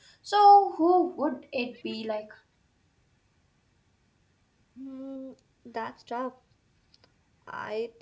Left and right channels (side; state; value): both; identical; correlation 1.00